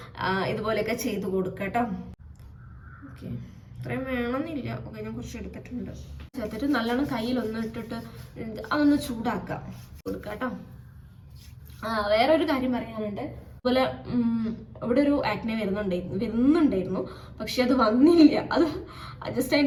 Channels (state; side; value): identical; both; correlation 1.00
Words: ഇതുപോലെയൊക്കെ ചെയ്ത് കൊടുക്കാം കേട്ടോ. ഓക്കെ, ഇത്രയും വേണമെന്നില്ല. ഓക്കെ, ഞാൻ കുറച്ച് എടുത്തിട്ടുണ്ട്. ചേർത്തിട്ട് നല്ലോണം കയ്യിലൊന്ന് ഇട്ടിട്ട് അതൊന്ന് ചൂടാക്കാം കൊടുക്കാം കേട്ടോ. വേറൊരു കാര്യം പറയാനുണ്ട്. അതുപോലെ ഇവിടെ ഒരു ആക്നെ വരുന്നുണ്ടായിരുന്നു, പക്ഷെ അത് വന്നില്ല. അത് ജസ്റ്റ്